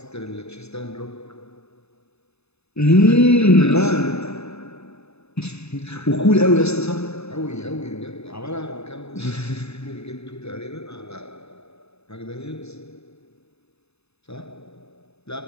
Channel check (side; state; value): right; late; 0.79 ms